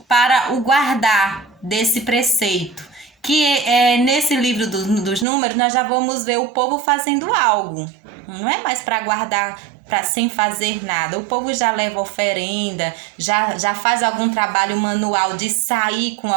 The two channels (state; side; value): drops out; left; at 5.2 s